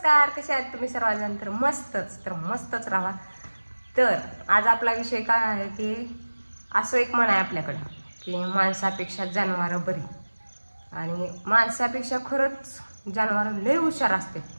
कसे आहात तुम्ही सर्वजण? तर मस्तच राहा. तर आज आपला विषय काय आहे की असं एक म्हण आहे आपल्याकडे की माणसापेक्षा जनावरं बरी, आणि माणसापेक्षा खरंच जनावरं लय हुशार असते.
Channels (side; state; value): both; inverted; correlation -1.00